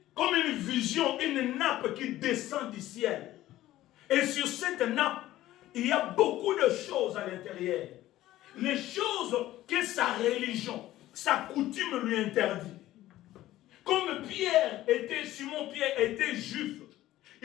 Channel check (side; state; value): right; quieter; 14.9 dB